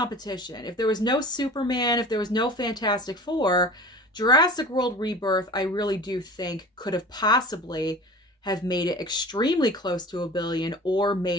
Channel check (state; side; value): normal; both; correlation 0.39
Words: if there was no Superman, if there was no Fantastic Four, Jurassic World Rebirth, I really do think could have possibly have made it extremely close to $1 billion or